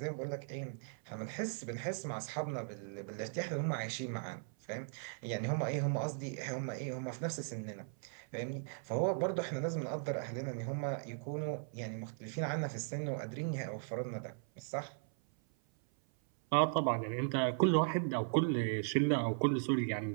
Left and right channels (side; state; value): left; silent; 53 dB below the other